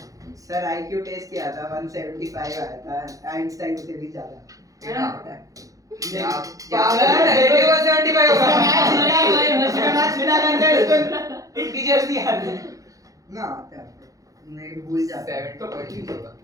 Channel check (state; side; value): late; left; 0.17 ms